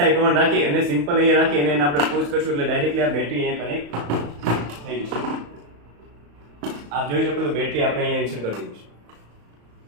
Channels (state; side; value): late; left; 35 ms